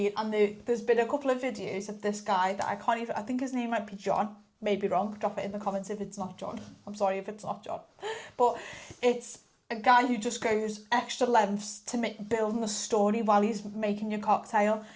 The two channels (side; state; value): both; identical; correlation 1.00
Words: and there's been a couple of videos of this guy that I think his name might be John, maybe wrong, drop it in the comments if it's not John. I'm sorry if it's not John, but it's a guy who just goes extra lengths to building a story while he's making your cocktail.